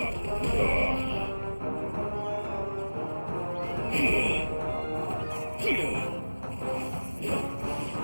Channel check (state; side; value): inverted; both; correlation -1.00